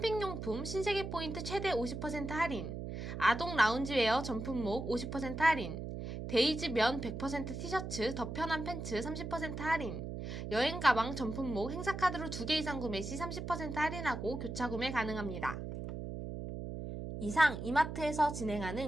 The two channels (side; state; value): right; noise; hum, 6 dB below the sound